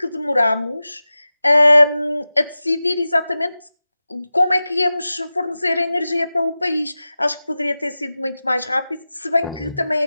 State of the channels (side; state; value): both; inverted; correlation -0.95